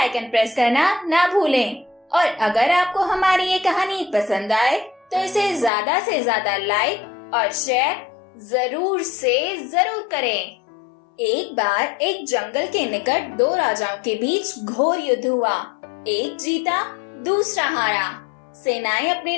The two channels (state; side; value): drops out; right; at 5.7 s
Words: प्रेस करना ना भूलें। और अगर आपको हमारी ये कहानी पसंद आए तो इसे ज्यादा से ज्यादा लाइक और शेयर जरूर से जरूर करें। एक बार एक जंगल के निकट दो राजाओं के बीच घोर युद्ध हुआ। एक जीता, दूसरा हारा। सेनाएं अपने